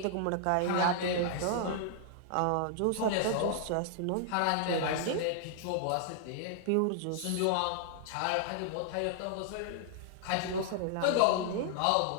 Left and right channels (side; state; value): both; different; correlation 0.00